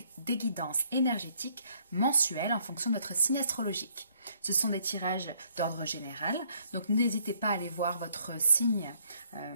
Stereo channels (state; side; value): inverted; both; correlation -0.67